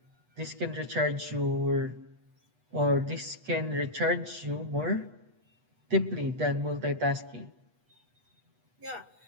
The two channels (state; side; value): late; left; 8.2 ms